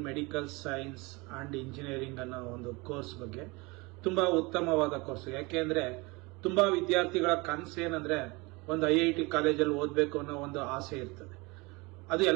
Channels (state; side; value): quieter; left; 25.6 dB